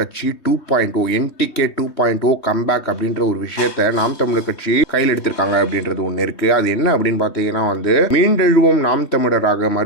2.0 என்டிகே 2.0 கம்பேக் அப்படின்ற ஒரு விஷயத்த நாம் தமிழர் கட்சி கையில் எடுத்திருக்காங்க அப்படின்றது ஒன்று இருக்கு. அது என்ன அப்படின்னு பார்த்தீங்கன்னா மீண்டெழுவோம் நாம் தமிழராக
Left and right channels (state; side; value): late; right; 3.2 ms